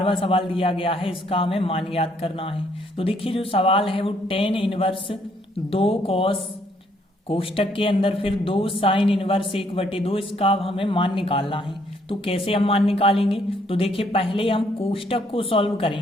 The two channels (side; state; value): both; normal; correlation 0.68